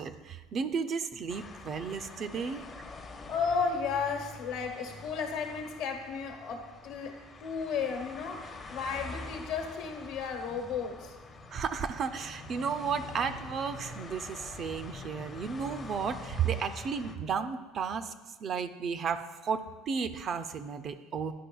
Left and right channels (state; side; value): normal; both; correlation 0.56